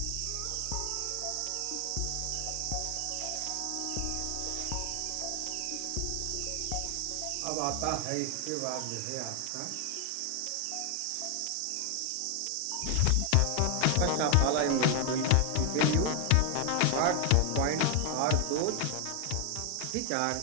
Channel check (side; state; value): both; different; correlation 0.00